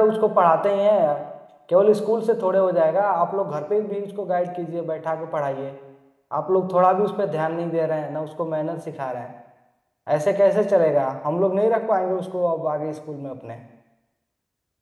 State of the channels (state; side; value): identical; both; correlation 1.00